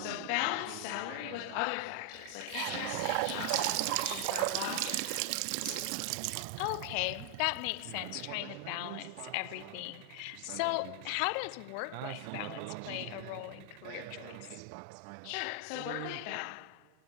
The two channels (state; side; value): different; both; correlation 0.00